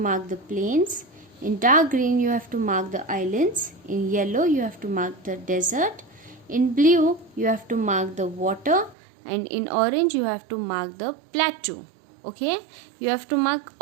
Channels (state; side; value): drops out; left; at 9.0 s